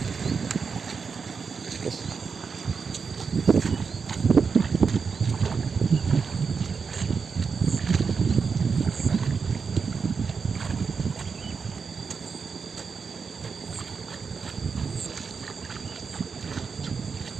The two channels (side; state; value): left; quieter; 5.5 dB